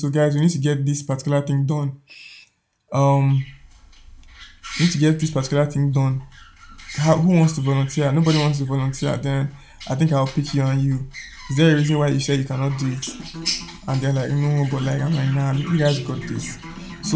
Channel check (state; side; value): identical; both; correlation 1.00